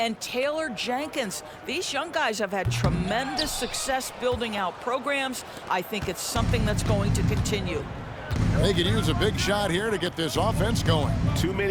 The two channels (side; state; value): both; identical; correlation 1.00